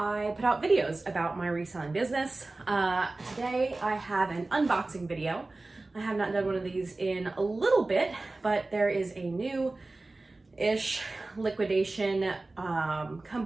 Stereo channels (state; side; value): quieter; left; 3.1 dB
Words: put out videos about my reselling business. Today I have an unboxing video. I have not done one of these in a little bit, but there is a new-ish liquidation